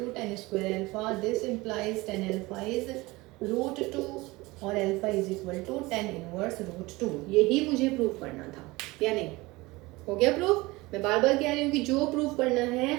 tan square alpha, this implies tan alpha is root 2 और alpha is equal to tan inverse root 2। यही मुझे प्रूफ करना था, या नहीं, हो गया प्रूफ। मैं बार बार कह रही हूँ कि जो प्रूफ करना है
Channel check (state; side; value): quieter; left; 21.7 dB